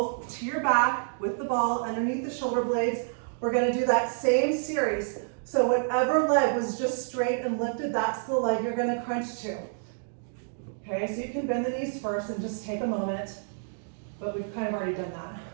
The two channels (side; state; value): left; silent; digital silence